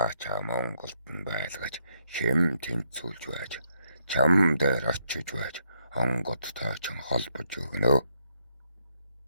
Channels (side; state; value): both; inverted; correlation -0.76